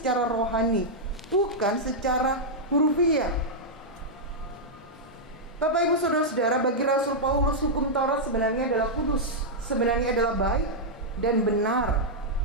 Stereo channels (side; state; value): both; normal; correlation -0.07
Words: rohani, bukan secara hurufiah. Bapak Ibu Saudara-saudara, bagi Rasul Paulus hukum Taurat sebenarnya adalah kudus, sebenarnya adalah baik dan benar.